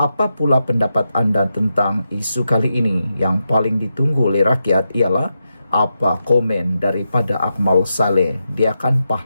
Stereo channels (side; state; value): both; inverted; correlation -0.86